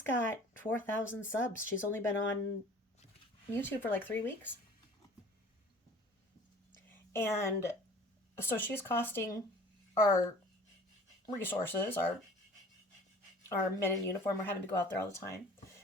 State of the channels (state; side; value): normal; both; correlation 0.47